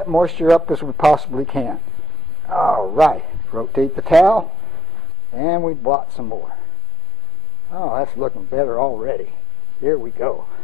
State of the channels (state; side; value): drops out; right; at 5.0 s